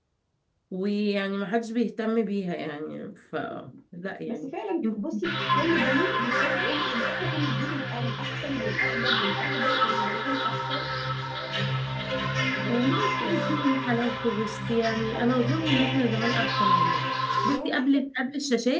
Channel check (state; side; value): identical; both; correlation 1.00